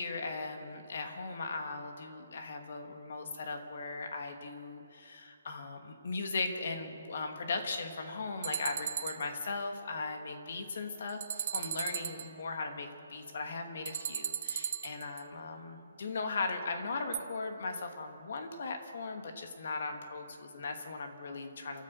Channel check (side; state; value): both; inverted; correlation -0.73